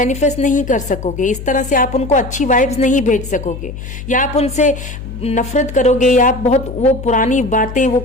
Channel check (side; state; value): left; noise; hum, 10 dB below the sound